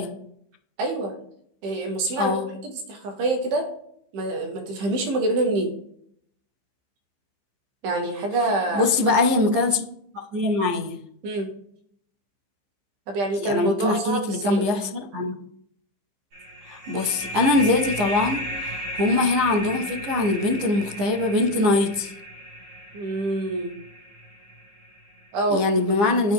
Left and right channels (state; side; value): late; left; 15 ms